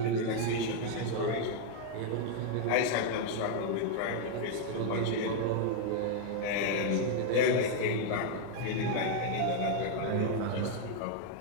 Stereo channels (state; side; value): different; both; correlation 0.00